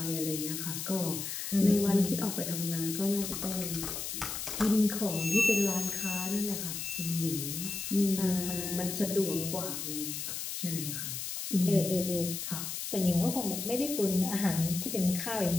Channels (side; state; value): left; noise; hiss, 5 dB below the sound